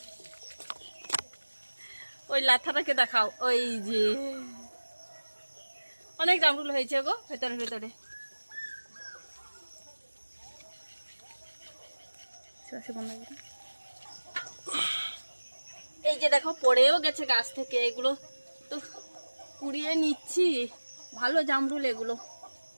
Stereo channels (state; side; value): inverted; both; correlation -1.00